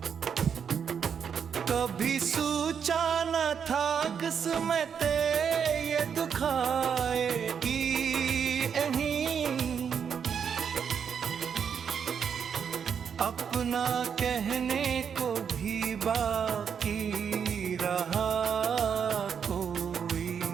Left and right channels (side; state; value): left; quieter; 7.2 dB